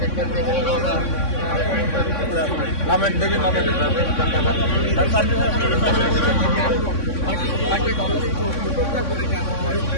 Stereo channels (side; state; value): right; late; 3.6 ms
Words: নামেন দেখি, নামেন।